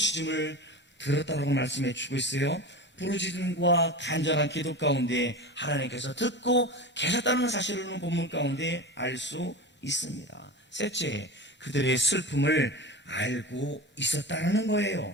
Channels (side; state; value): both; normal; correlation 0.28